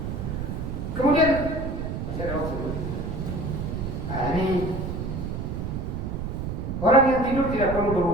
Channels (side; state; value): right; noise; rumble, 4 dB below the sound